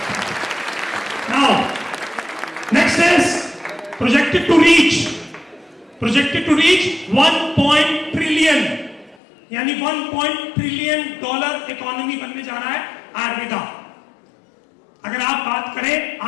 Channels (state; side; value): drops out; right; at 9.2 s